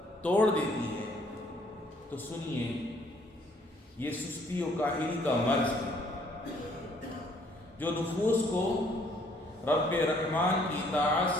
توڑ دیتی ہے؟ تو سنیے، یہ سستی و کاہلی کا مرض ہے جو نفوس کو رب رحمان کی اطاعت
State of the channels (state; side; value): normal; both; correlation 0.63